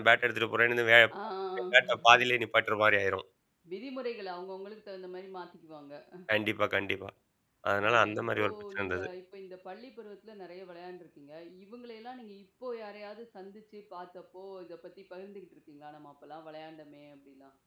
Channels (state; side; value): identical; both; correlation 1.00